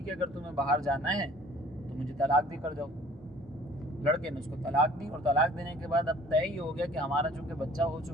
ہے اگر تمہیں باہر جانا ہے تو مجھے طلاق دے کر جاؤ۔ لڑکے نے اس کو طلاق دی، اور طلاق دینے کے بعد اب طے ہی ہو گیا کہ ہمارا چونکہ بچہ ہو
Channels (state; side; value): normal; both; correlation 0.52